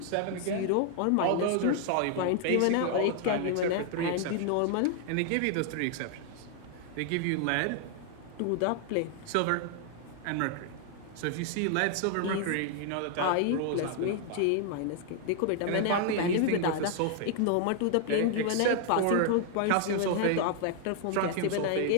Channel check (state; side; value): different; both; correlation 0.00